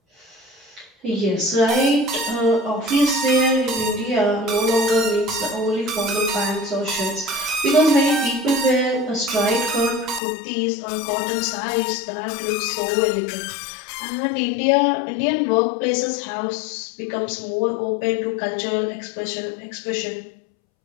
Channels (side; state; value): right; drops out; at 10.2 s